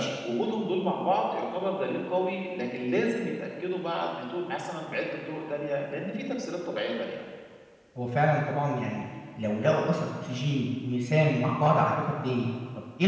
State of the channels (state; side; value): identical; both; correlation 1.00